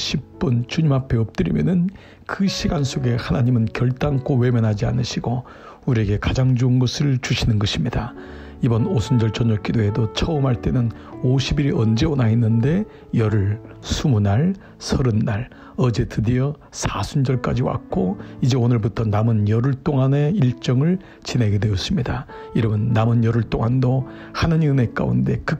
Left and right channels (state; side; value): identical; both; correlation 1.00